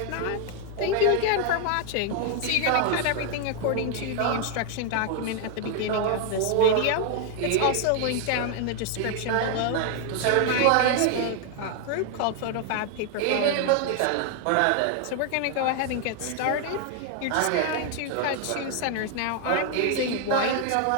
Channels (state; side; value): different; both; correlation 0.00